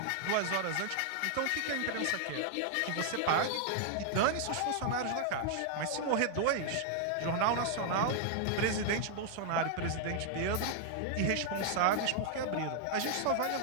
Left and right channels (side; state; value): both; different; correlation 0.00